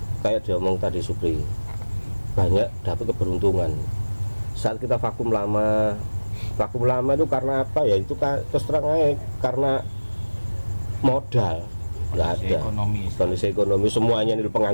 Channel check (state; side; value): inverted; both; correlation -1.00